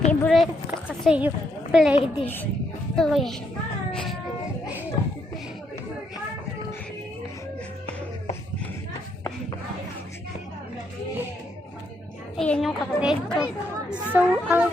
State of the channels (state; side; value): normal; both; correlation 0.75